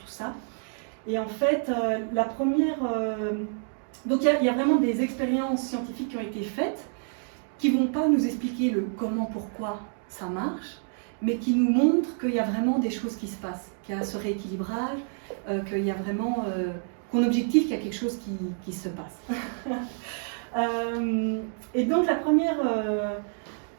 ça. Et en fait, la première... donc il y a vraiment des expériences scientifiques qui ont été faites, qui ne vont pas nous expliquer le comment, pourquoi ça marche, mais qui nous montre qu'il y a vraiment des choses qui se passent, qu'il y a ce rééquilibrage, qu'il y a vraiment, qu'on objective qu'il y a quelque chose qui se passe. Et donc la première,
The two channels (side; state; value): left; silent; 59 dB below the other